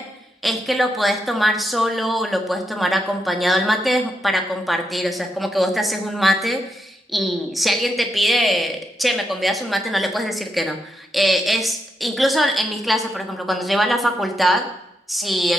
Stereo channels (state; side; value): normal; both; correlation 0.82